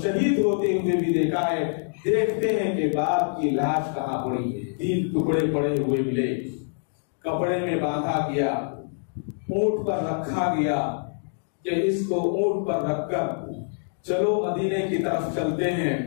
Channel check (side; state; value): right; silent; digital silence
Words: ہوتے ہوئے بھی دیکھا ہے۔ دیکھتے ہیں کہ باپ کی لاش کہاں پڑی ہے، 3 ٹکڑے پڑے ہوئے ملے، کپڑے میں باندھا گیا، اونٹ پر رکھا گیا کہ اس کو اونٹ پر رکھ کر چلو مدینے کی طرف چلتے ہیں،